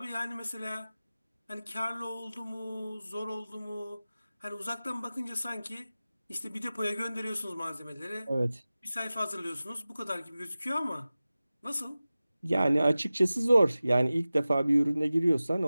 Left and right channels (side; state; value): both; inverted; correlation -0.96